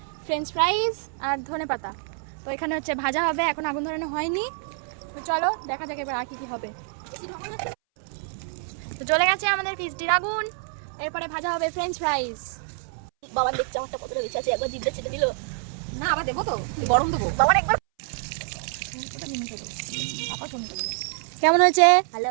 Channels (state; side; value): silent; left; 61 dB below the other